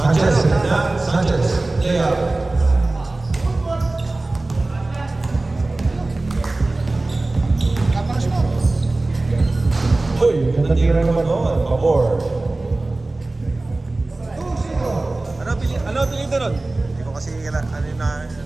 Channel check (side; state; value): left; quieter; 3.0 dB